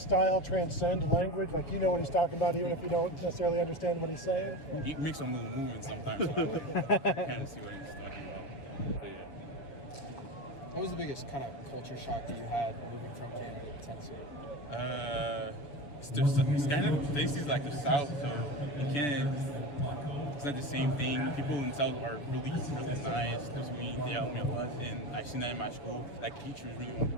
transcend language? Like, you know what he's talking about, even if you don't necessarily understand what he's saying? He makes some little movements sometimes, so I kind of see what he's talking about. So, yeah. What was the biggest kind of culture shock that you had moving from Canada to Tennessee? It's kind of Tennessee's like the South, so in Canada it's not the same thing. People in the South are really, really nice to me. They help me a lot, and I've seen that in my school. Like teachers really want me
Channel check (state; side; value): late; right; 6.9 ms